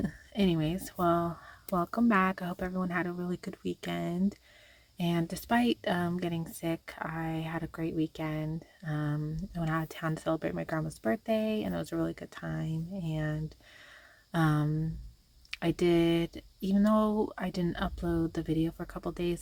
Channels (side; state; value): both; identical; correlation 1.00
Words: Anyways, well, welcome back. I hope everyone had a really good weekend. And despite getting sick, I had a great weekend. I went out of town to celebrate my grandma's birthday and it was a really good time. And um I did, even though I didn't upload the video for a couple days,